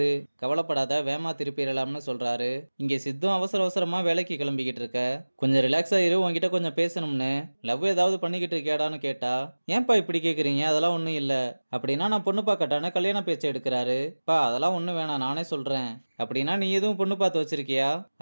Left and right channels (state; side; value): inverted; both; correlation -1.00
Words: கவலைப்படாத வேமா திருப்பிடலாம்னு சொல்றாரு. இங்க சித்தும் அவசர அவசரமா வேலைக்கு கிளம்பிக்கிட்டு இருக்க. கொஞ்சம் ரிலாக்ஸா இரு, உன்கிட்ட கொஞ்சம் பேசணும்னு. லவ் ஏதாவது பண்ணிக்கிட்டு இருக்கியாடான்னு கேட்டா, ஏன்பா இப்படி கேக்குறீங்க? அதெல்லாம் ஒண்ணும் இல்ல. அப்படின்னா நான் பொண்ணு பார்க்கட்டான்னு கல்யாண பேச்சை எடுக்கிறாரு. பா அதெல்லாம் ஒண்ணும் வேணாம், நானே சொல்றேன். அப்படின்னா நீ எதுவும் பொண்ணு பார்த்து வச்சிருக்கியா?